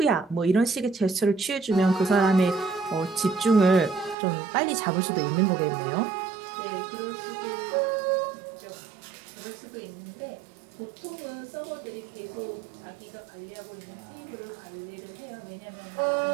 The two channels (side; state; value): left; drops out; at 4.2 s